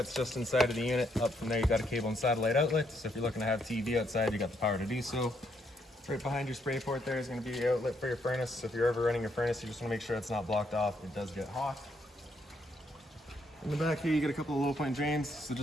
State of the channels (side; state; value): both; normal; correlation 0.74